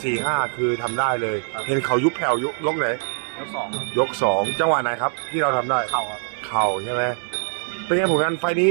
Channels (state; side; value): silent; left; 64 dB below the other